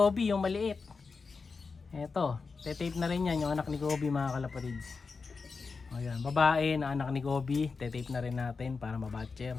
yung maliit. Eto. Tetape na rin yan, yung anak ni Kobe, mga kalapatids. Ayan. Babae na anak ni Kobe. Tetape na rin natin para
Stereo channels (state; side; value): quieter; right; 4.7 dB